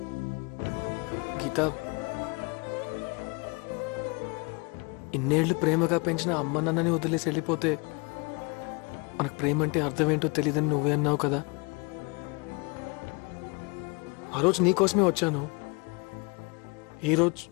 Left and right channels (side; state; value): right; quieter; 30.3 dB